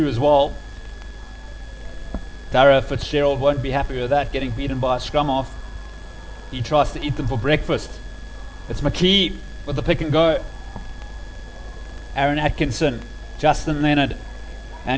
as well. Dara Fitzgerald won't be happy with that, getting beaten by a scrum off. He tries to eat them for breakfast. It's McKee with the pick and go. Aaron Atkinson, Justin Leonard,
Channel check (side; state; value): both; identical; correlation 1.00